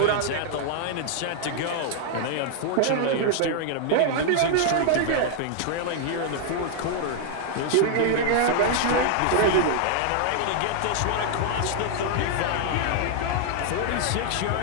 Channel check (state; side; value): different; both; correlation 0.00